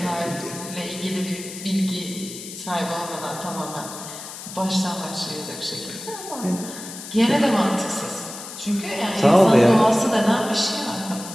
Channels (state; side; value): noise; left; hiss, 11 dB below the sound